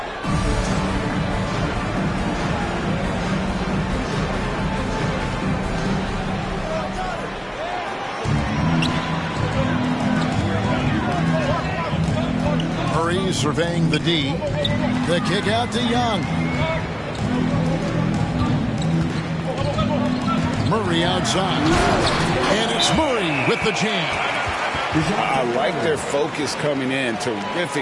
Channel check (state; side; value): identical; both; correlation 1.00